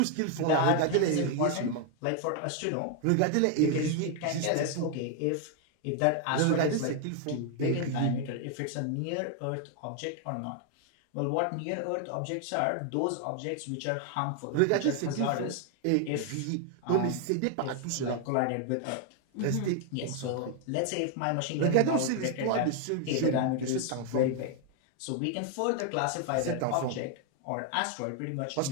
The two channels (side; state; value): both; different; correlation 0.00